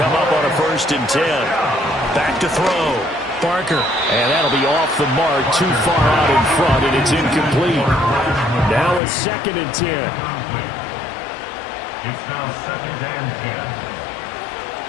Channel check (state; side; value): drops out; right; at 9.0 s